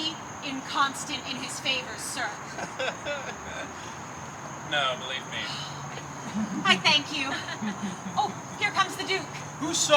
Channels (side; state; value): both; identical; correlation 1.00